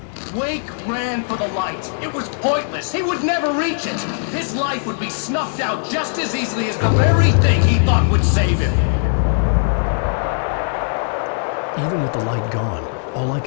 Wake ran for the light. It was pointless. He would never reach it. His life would be snuffed out just as easily as the very thing he thought would save him. Even with the light gone, all I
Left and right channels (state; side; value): silent; right; 66 dB below the other